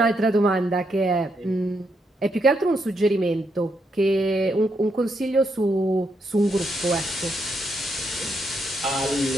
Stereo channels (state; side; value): normal; both; correlation 0.79